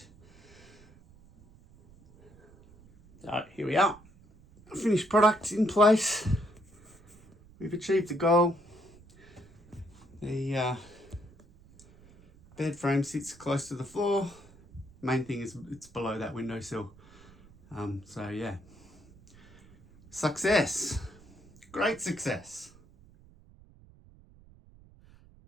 So here we are. Finished product in place. We've achieved the goal. The bed frame sits close to the floor. Main thing is it's below that windowsill. So yeah, success, great success.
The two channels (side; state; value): right; noise; rumble, 25 dB below the sound